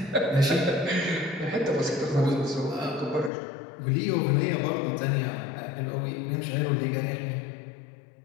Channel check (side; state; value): right; drops out; at 3.3 s